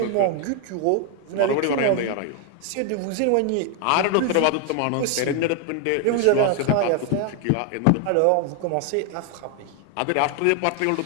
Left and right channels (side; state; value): both; different; correlation 0.01